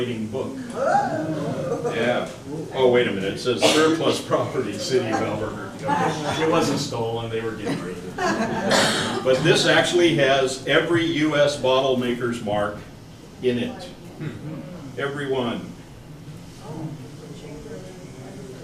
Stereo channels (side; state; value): both; identical; correlation 1.00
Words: book. Yeah. Oh, wait a minute. It says surplus property, City of Albuquerque. It wasn't stolen. They were getting rid of it. But this actually has every U.S. bottle maker's mark in it. Every one.